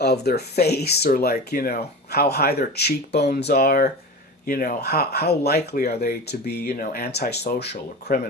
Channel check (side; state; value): both; normal; correlation 0.30